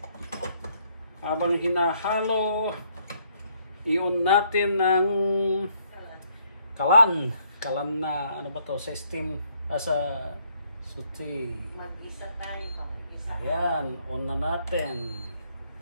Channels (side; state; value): both; inverted; correlation -0.69